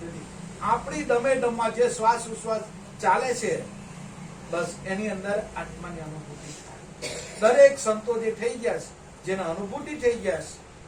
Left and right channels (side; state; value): both; identical; correlation 1.00